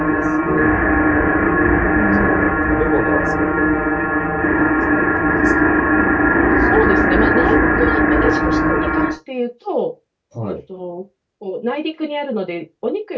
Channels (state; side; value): identical; both; correlation 1.00